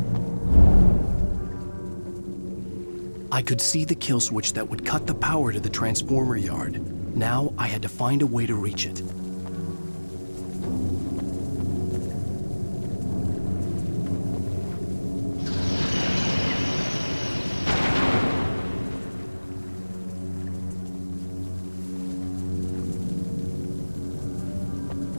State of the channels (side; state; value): both; inverted; correlation -1.00